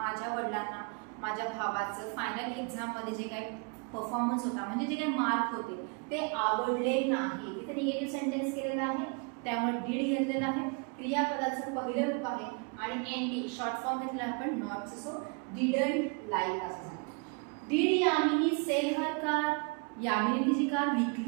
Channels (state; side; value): quieter; left; 35.0 dB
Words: वडिलांना माझ्या भावाचं फायनल एक्झाम मध्ये जे काही परफॉर्मन्स होता म्हणजे जे काही मार्क होते ते आवडले नाही. इथे निगेटिव्ह सेंटेन्स केलेला आहे त्यामुळे डिड घेतलेला आहे. क्रियापदाचं पहिलं रूप आहे आणि एनडी शॉर्ट फॉर्म घेतला आपण नॉट. सो डिडंट लाईक असं झालं. Did Yamini sell her car. Yamini तिची कार